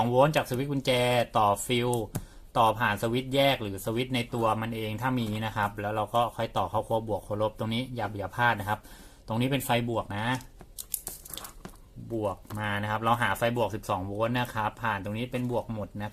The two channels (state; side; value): identical; both; correlation 1.00